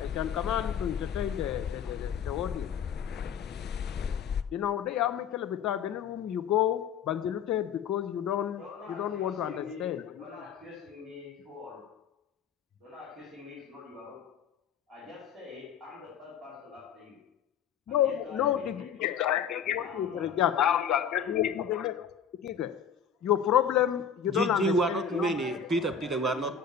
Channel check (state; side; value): quieter; right; 7.0 dB